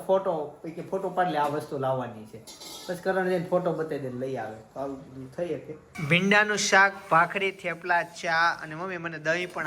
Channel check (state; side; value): identical; both; correlation 1.00